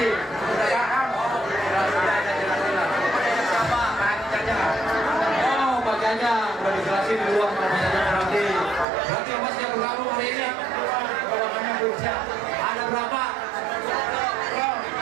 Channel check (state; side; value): drops out; left; at 8.8 s